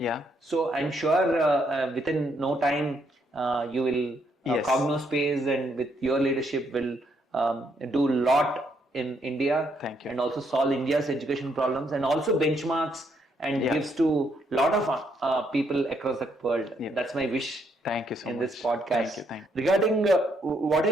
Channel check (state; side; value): normal; both; correlation 0.73